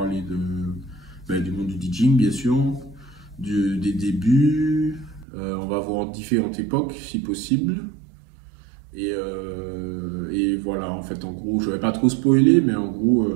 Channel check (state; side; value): drops out; left; at 5.2 s